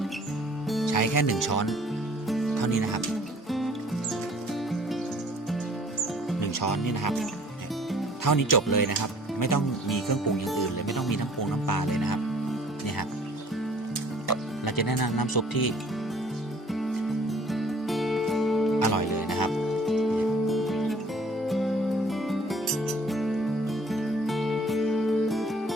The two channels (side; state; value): both; normal; correlation 0.54